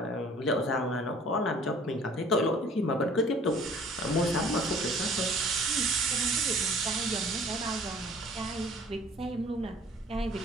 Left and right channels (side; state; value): both; normal; correlation 0.51